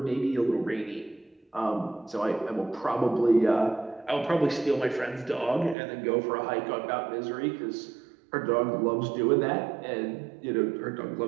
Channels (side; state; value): left; drops out; at 5.8 s